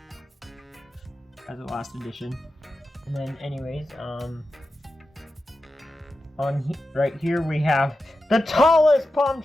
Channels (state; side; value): normal; both; correlation 0.91